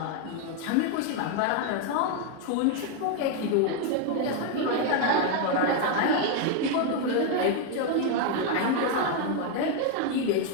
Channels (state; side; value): different; both; correlation 0.01